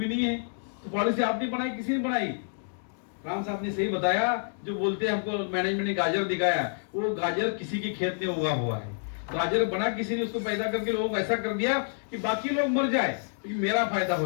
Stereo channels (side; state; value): right; silent; digital silence